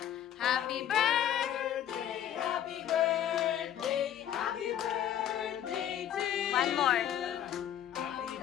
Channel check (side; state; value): right; quieter; 10.5 dB